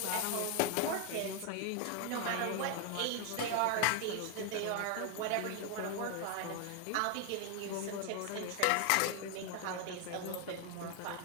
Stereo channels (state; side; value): different; both; correlation 0.01